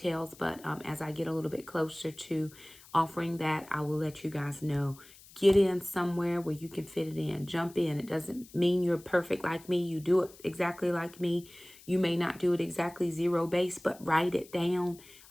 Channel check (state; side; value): noise; left; hiss, 22 dB below the sound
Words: but as I get a little bit closer to offering that, I will let you guys know. Get in somewhere where you can fit it in. Jump in. It doesn't mean you're perfect like me. You do it exactly like me. You may not do it exactly zero base, but write it down.